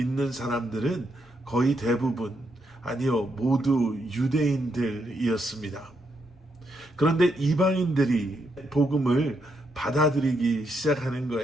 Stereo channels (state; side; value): normal; both; correlation 0.79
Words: 사람들은 거의 대부분, 아니요, 모두 유대인들이었습니다. 그런데 이방인들이 복음을 받아들이기 시작하는